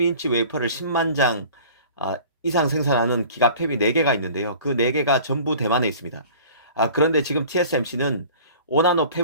웨이퍼를 10만 장 이상 생산하는 기가팹이 4개가 있는데요. 그 4개가 전부 대만에 있습니다. 그런데 지금 TSMC는 5나노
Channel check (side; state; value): both; inverted; correlation -0.44